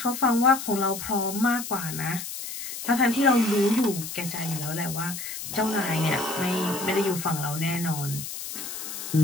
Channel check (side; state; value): left; noise; hiss, 8 dB below the sound